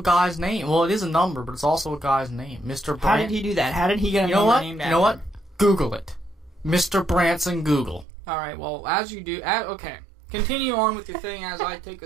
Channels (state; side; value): drops out; left; at 8.1 s